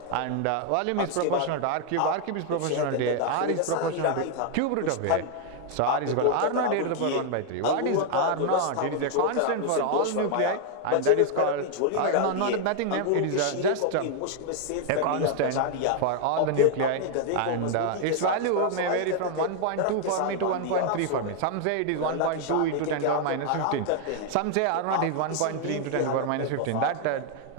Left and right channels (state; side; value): different; both; correlation 0.00